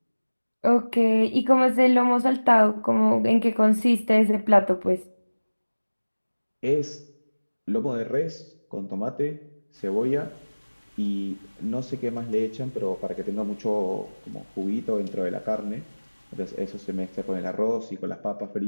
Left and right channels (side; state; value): both; inverted; correlation -1.00